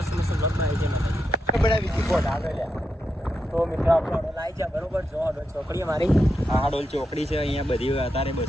મસ્ત બ્લોગ બનાવી છે તો મિત્રો આપણે હડોલ આવી જાય બરોબર. જો હડોલ ચોકડી અમારી આ ડોલ ચોકડી છે. અહીંયા બધી અત્યારે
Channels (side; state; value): both; normal; correlation 0.85